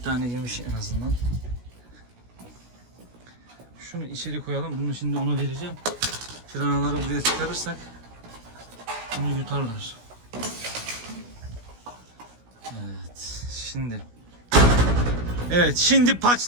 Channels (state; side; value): late; left; 16 ms